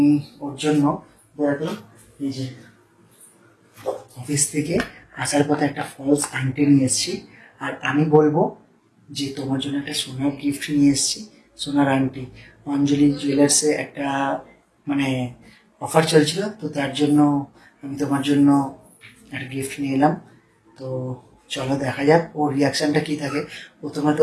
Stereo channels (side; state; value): both; identical; correlation 1.00